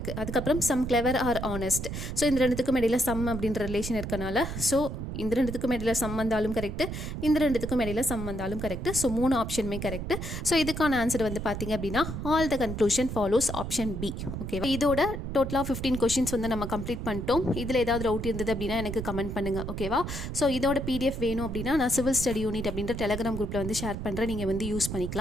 அதுக்கப்புறம் some clever are honest. So இந்த ரெண்டுத்துக்கும் இடையில சம் அப்படின்ற ரிலேஷன் இருக்கனால ஸோ இந்த ரெண்டுத்துக்கும் இடையில சம் வந்தாலும் கரெக்டு, இந்த ரெண்டுத்துக்கும் இடையில சம் வந்தாலும் கரெக்ட். ஸோ 3 ஆப்ஷனுமே கரெக்ட். ஸோ இதுக்கான ஆன்சர் வந்து பார்த்தீங்க அப்படின்னா all the conclusion follows option B. ஓகேவா? இதோட டோட்டலாக 15 கொஷின்ஸ் வந்து நம்ம கம்ப்ளீட் பண்ணிட்டோம். இதில் ஏதாவது டவுட் இருந்தது அப்படின்னா எனக்கு கமெண்ட் பண்ணுங்கள். ஓகேவா? ஸோ இதோட PDF வேணும் அப்படின்னா நான் சிவில் ஸ்டடி யூனிட் அப்படின்ற டெலிகிராம் குரூப்பில் வந்து ஷேர் பண்ணுறேன். நீங்கள் வந்து யூஸ்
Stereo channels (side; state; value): right; noise; rumble, 6 dB below the sound